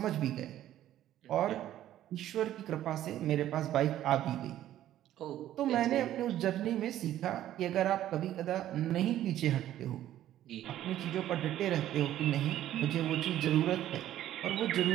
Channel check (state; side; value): quieter; left; 12.6 dB